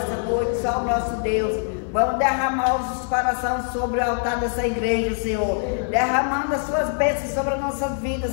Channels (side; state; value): right; silent; 63 dB below the other